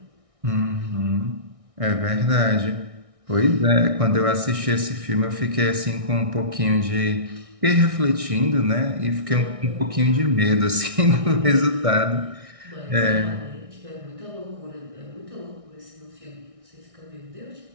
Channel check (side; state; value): left; late; 1.6 ms